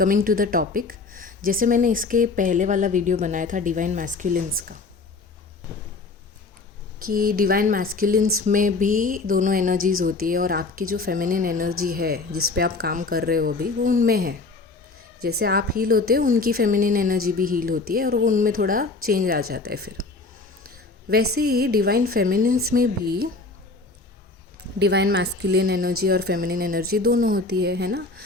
टू द टॉपिक, जैसे मैंने इसके पहले वाला वीडियो बनाया था डिवाइन मैस्कुलिन्स का, कि डिवाइन मैस्कुलिन्स में भी दोनों एनर्जीज़ होती है और आपकी जो फेमिनिन एनर्जी है जिस पे आप काम कर रहे हो अभी, वो उनमें है। जैसे आप हील होते हो, उनकी फेमिनिन एनर्जी भी हील होती है और वो उनमें थोड़ा चेंज आ जाता है। फिर वैसे ही डिवाइन फेमिनिन्स में भी डिवाइन मैस्कुलिन एनर्जी और फेमिनिन एनर्जी दोनों होती है ना।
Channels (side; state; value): right; quieter; 3.7 dB